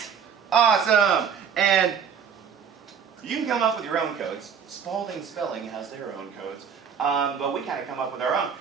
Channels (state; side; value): quieter; left; 7.2 dB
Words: Awesome. And you can come up with your own codes. Spalding Spelling has their own codes. But we kind of come up with our own.